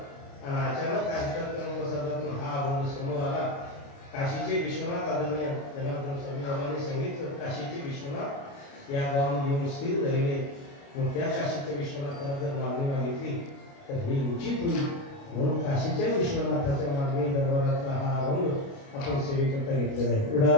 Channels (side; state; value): right; late; 29 ms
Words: आणि अचानक कार्यक्रम प्रसादातून हा अभंग समोर आला. काशीचे विश्वनाथ आदरणीय जनार्दन स्वामी बाबांनी सांगितलं, काशीचे विश्वनाथ या गावामध्ये येऊन स्थिर झालेले. मग त्या काशीच्या विश्वनाथाला जर मागणी मागितली तर हे उचित होईल. म्हणून काशीच्या विश्वनाथाच्या मागणी दरबारातला हा अभंग आपण सेवेकरता घेतलेला आहे.